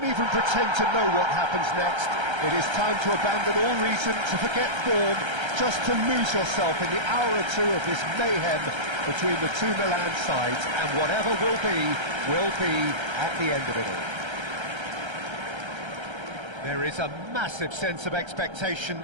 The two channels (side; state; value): left; late; 1.3 ms